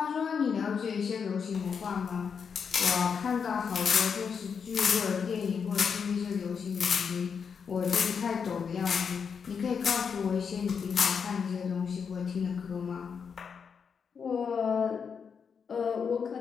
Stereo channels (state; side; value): quieter; right; 6.4 dB